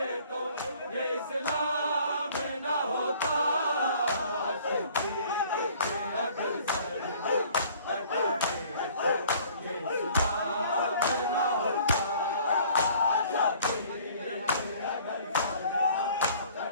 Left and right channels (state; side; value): inverted; both; correlation -0.53